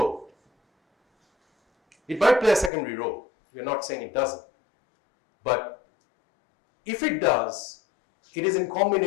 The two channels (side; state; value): right; drops out; at 2.7 s